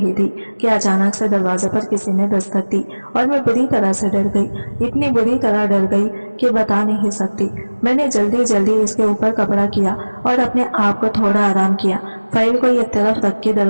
थी कि अचानक से दरवाजे पर किसी ने दस्तक दी और मैं बुरी तरह से डर गई। इतनी बुरी तरह डर गई कि बता नहीं सकती। मैंने जल्दी जल्दी इसके ऊपर कपड़ा किया और अपने आप को थोड़ा आराम किया। फाइल को एक तरफ रख के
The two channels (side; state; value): both; inverted; correlation -1.00